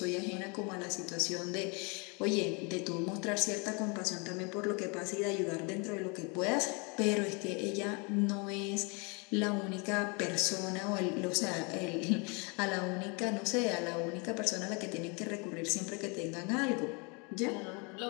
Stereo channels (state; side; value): quieter; right; 31.9 dB